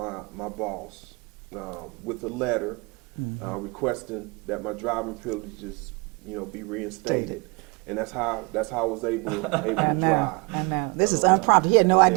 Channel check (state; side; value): quieter; left; 29.2 dB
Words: boss with a letter requesting that my driving privileges, be reinstated. And that's how I was able to drive. I know. This is unprompted. He had no